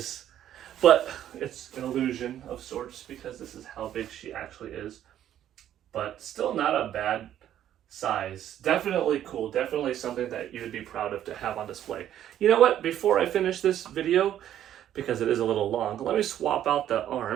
but it's an illusion of sorts because this is how big she actually is. But still not a bad size. Definitely cool. Definitely something that you would be proud of to have on display. You know what? Before I finish this video, because it is a little long, let me swap out the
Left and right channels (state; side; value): quieter; left; 11.2 dB